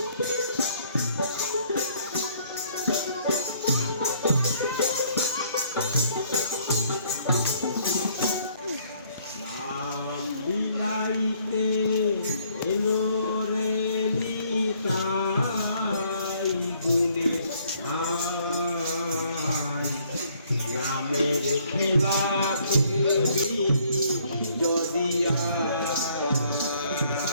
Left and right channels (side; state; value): both; inverted; correlation -0.64